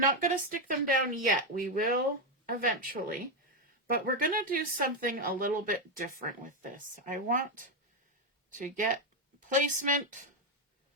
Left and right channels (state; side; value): normal; both; correlation 0.06